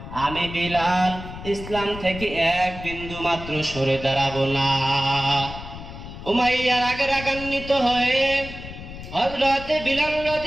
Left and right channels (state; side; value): noise; left; rumble, 12 dB below the sound